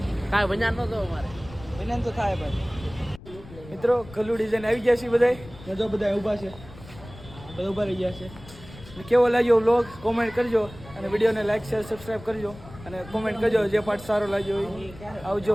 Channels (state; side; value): noise; left; rumble, 18 dB below the sound